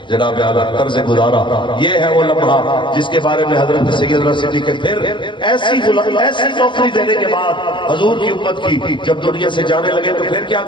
جناب اعلیٰ طرز گزارا، یہ ہے وہ لمحہ جس کے بارے میں حضرت سیدنا صدیق پھر ایسی نوکری دینے کے بعد حضور کی امت کی جب دنیا سے جانے لگے تو پھر کیا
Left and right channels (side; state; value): right; late; 0.23 ms